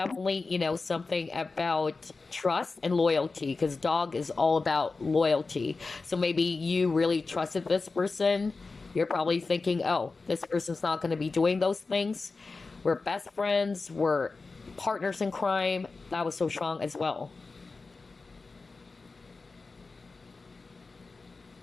something about trust and loyalty, because dog is all about loyalty. So maybe you really trusted this person. You're probably thinking, oh, this person's not going to be doing those things. We're best friends. We're partners in crime. That was so strong as well.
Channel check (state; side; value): quieter; right; 3.9 dB